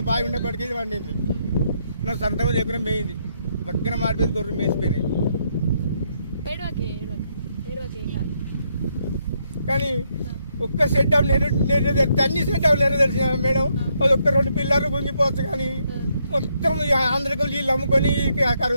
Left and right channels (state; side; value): inverted; both; correlation -0.75